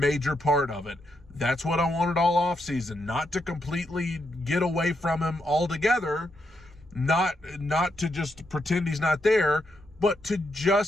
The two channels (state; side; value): normal; both; correlation 0.81